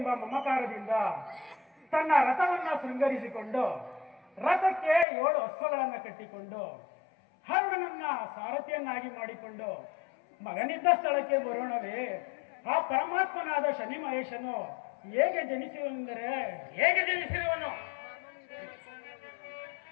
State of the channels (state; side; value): drops out; right; at 5.1 s